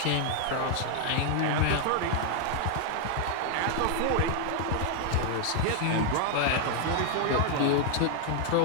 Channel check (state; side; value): different; both; correlation 0.00